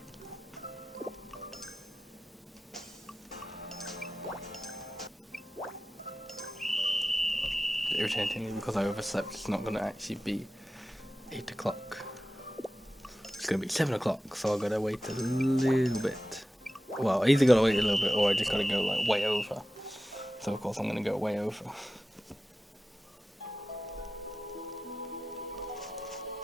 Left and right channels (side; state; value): both; normal; correlation 0.94